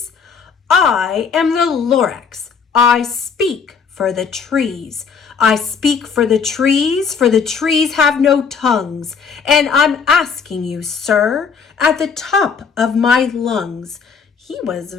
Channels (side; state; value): right; quieter; 5.9 dB